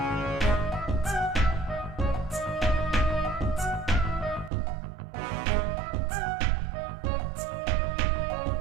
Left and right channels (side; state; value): left; drops out; at 4.5 s